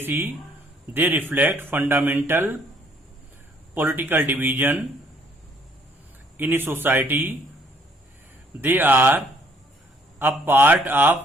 They reflect fundamental political division in a society. They are a part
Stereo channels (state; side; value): normal; both; correlation 0.63